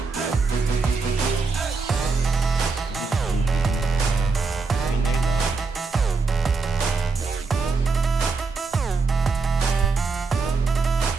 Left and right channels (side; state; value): left; quieter; 4.5 dB